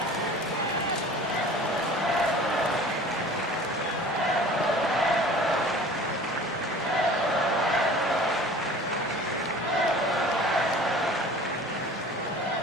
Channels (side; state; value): both; normal; correlation 0.44